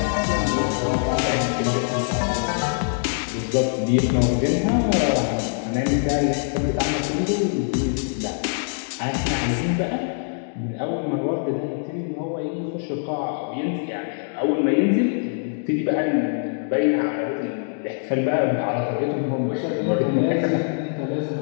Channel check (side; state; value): right; silent; digital silence